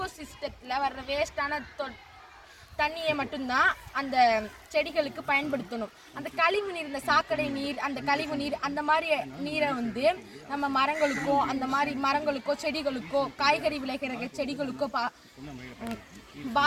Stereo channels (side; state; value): both; identical; correlation 1.00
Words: சிஸ்டத்தில் வர்ற வேஸ்ட்டான தண்ணியை மட்டும்தான் அந்த செடிகளுக்கு பயன்படுத்தணும். அந்த கழிவு நீர், இந்த சாக்கடை நீர், அந்த கழிவு நீர், அந்த மாதிரி நீரை நம்ம மரங்களுக்கோ செடிகளுக்கோ காய்கறி விளைகிற செடிகளுக்கோ